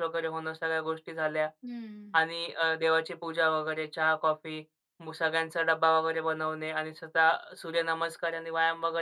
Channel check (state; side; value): identical; both; correlation 1.00